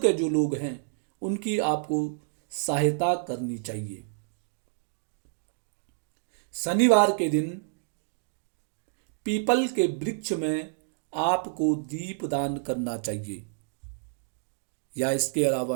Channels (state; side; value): silent; left; digital silence